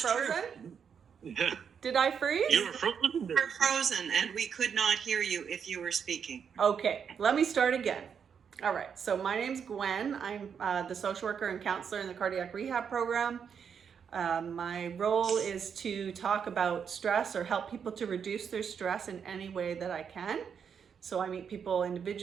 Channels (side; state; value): left; quieter; 7.1 dB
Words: Yeah. Did I freeze? You were frozen. You were frozen, and we could not hear you if you were speaking. Okay, let me start again. All right, so my name's Gwen. I'm the social worker and counselor in the cardiac rehab program. My role is to talk about stress or help people to reduce their stress in any way that I can. So I meet people